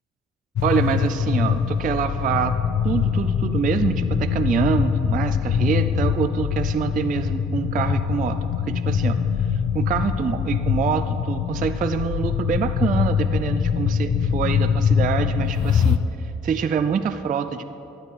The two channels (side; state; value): both; normal; correlation 0.56